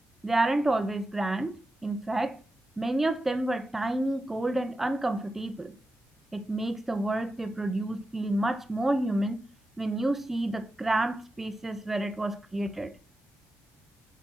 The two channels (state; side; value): normal; both; correlation 0.91